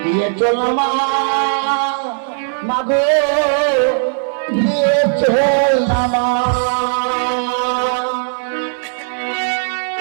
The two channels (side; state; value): left; silent; 68 dB below the other